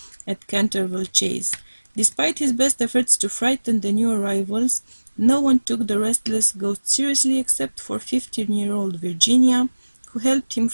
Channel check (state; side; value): inverted; both; correlation -1.00